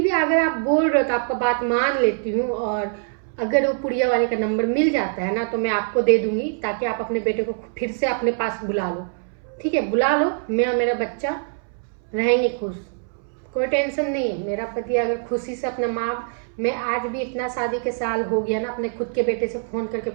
भी अगर आप बोल रहे हो तो आपका बात मान लेती हूँ। और अगर वो पुड़िया वाले का नंबर मिल जाता है ना तो मैं आपको दे दूंगी, ताकि आप अपने बेटे को फिर से अपने पास बुला लो, ठीक है। बुला लो, मैं और मेरा बच्चा रहेंगे खुश, कोई टेंशन नहीं है। मेरा पति अगर खुशी से अपना माँ, मैं आज भी इतना शादी के साल हो गया ना, अपने खुद के बेटे से फोन करके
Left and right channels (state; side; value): silent; left; 63 dB below the other